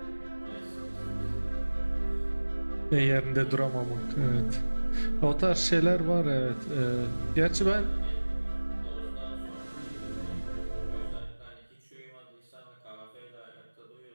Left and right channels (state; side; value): inverted; both; correlation -1.00